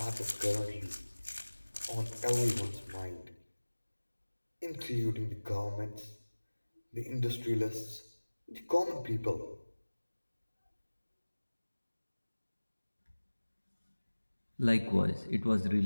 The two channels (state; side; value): inverted; both; correlation -1.00